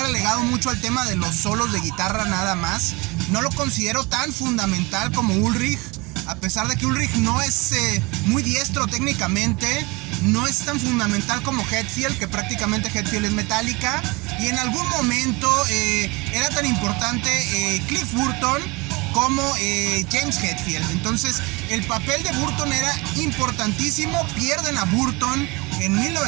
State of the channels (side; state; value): left; quieter; 25.6 dB